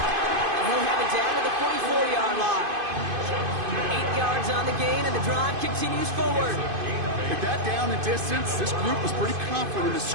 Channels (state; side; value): late; left; 2.5 ms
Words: he'll have it down to the 44-yard line. 8 yards on the gain, and the drive continues forward. With that down and distance, this group was pretty confident the